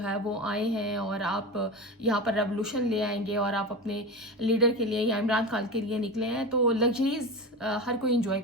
ہے وہ آئے ہیں اور آپ یہاں پر ریولوشن لے آئیں گے اور آپ اپنے لیڈر کے لیے یا عمران خان کے لیے نکلے ہیں, تو لگژریز ہر کوئی انجوائے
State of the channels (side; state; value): both; normal; correlation 0.24